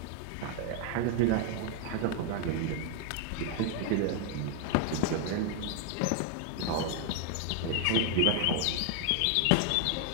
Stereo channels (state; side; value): different; both; correlation 0.00